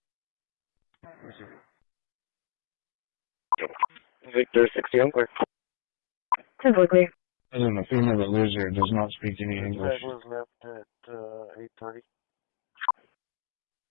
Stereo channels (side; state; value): right; silent; digital silence